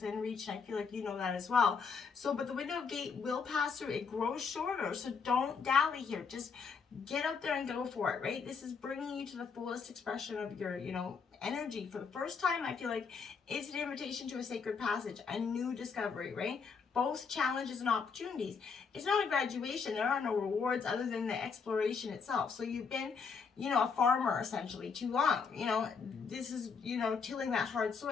reach, and I feel like you know that as well. So, but the window of gate will pass through. It grows shorter, so don't dally here. Just get out there and go for it, right? This is bringing you to the fullest expression of your, energy. For the first time, I feel like it's an invitation to a sacred passage, a new discovery, right? Both challenges and opportunities. It's not a graduation. There are no rewards other than the exploration itself. So you've been, a farmer essentially too long. This is, tilling that hard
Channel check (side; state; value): right; quieter; 5.6 dB